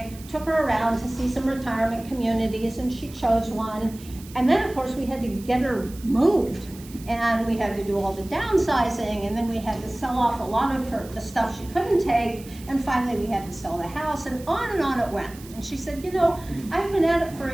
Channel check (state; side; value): noise; right; hiss, 20 dB below the sound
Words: took her around to see some retirement communities, and she chose one. And then, of course, we had to get her moved, and we had to do all the downsizing, and then we had to sell off a lot of the stuff she couldn't take, and finally we had to sell the house, and on it went. And she said, I've been at it for